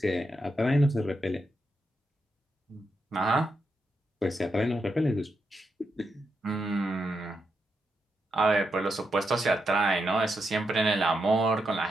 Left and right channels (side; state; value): both; normal; correlation 0.84